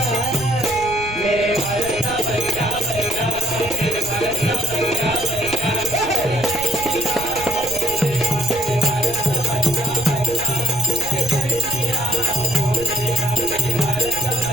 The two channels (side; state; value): right; noise; rumble, 13 dB below the sound